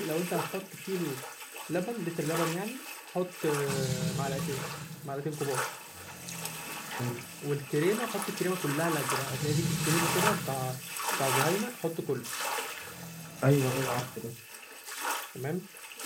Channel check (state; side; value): identical; both; correlation 1.00